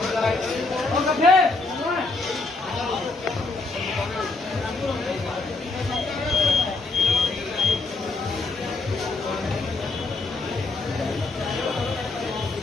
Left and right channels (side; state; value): right; quieter; 3.4 dB